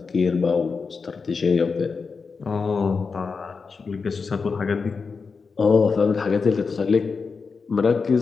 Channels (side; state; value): right; quieter; 5.0 dB